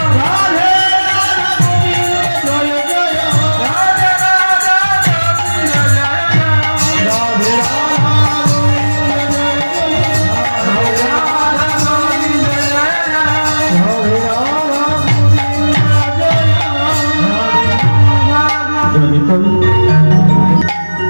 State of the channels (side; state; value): both; inverted; correlation -1.00